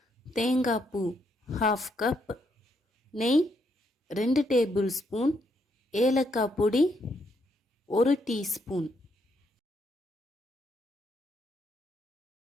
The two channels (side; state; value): both; normal; correlation 0.75